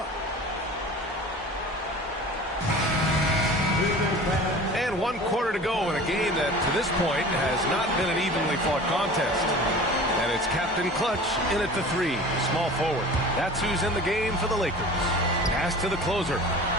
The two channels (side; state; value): both; normal; correlation 0.40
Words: And 1 quarter to go in a game that, to this point, has not been an evenly fought contest. And it's Captain Clutch in at the 3, small forward. That's who's in the game for the Lakers. Pass to the closer.